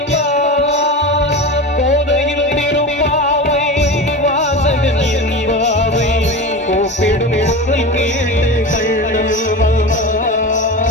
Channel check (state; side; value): normal; both; correlation 0.27